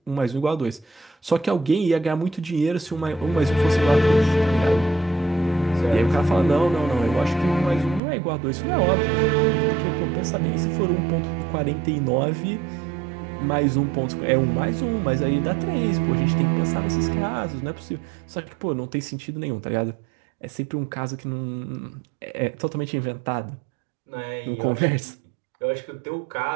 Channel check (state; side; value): drops out; left; at 8.0 s